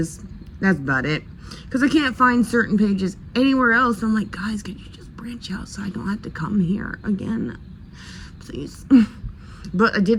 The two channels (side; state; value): both; identical; correlation 1.00